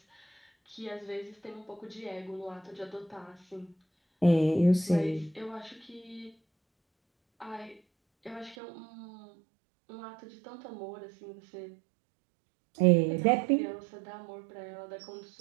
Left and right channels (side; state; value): left; drops out; at 8.6 s